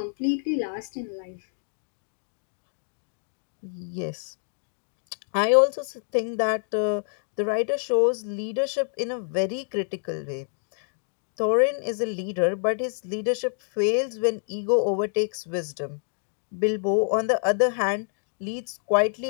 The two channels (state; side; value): silent; right; digital silence